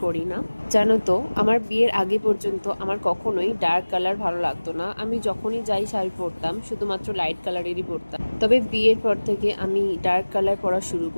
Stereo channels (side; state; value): both; inverted; correlation -1.00